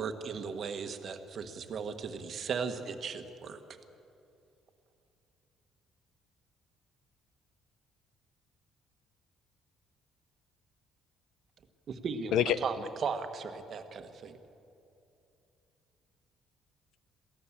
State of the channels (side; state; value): both; normal; correlation 0.57